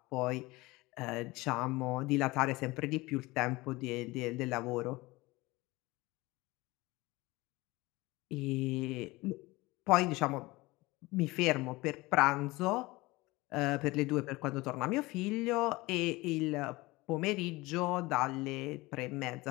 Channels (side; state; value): right; quieter; 21.4 dB